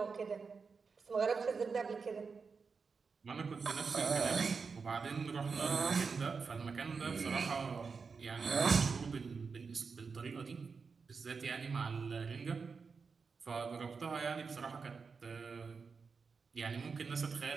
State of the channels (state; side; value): quieter; left; 5.1 dB